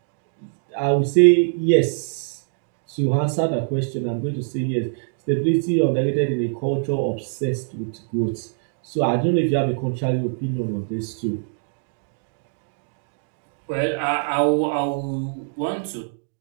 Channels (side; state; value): left; silent; digital silence